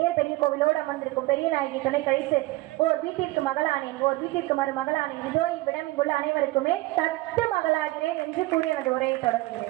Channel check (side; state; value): left; quieter; 19.2 dB